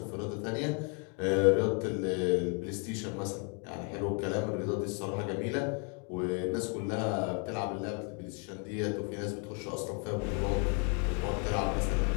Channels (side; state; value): right; quieter; 36.7 dB